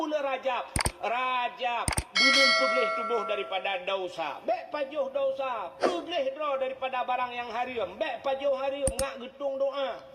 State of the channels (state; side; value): identical; both; correlation 1.00